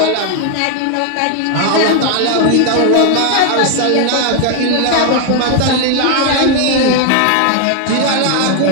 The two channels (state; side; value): different; both; correlation 0.00